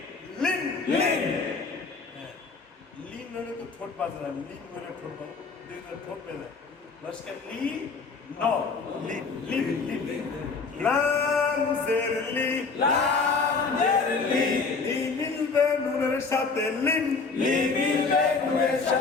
লিন, লিন, লিন হলে তো ঠোঁট বাজে না, লিন হলে ঠোঁট বাজে, দুইটা ঠোঁট বেজে লস্কার লি, ন, লিন, লিন, লিন, লাম জের লি, লাম জের লি, ই মিলবে নুনের সাথে লিন, লি মিলবে নুনের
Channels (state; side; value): quieter; right; 4.5 dB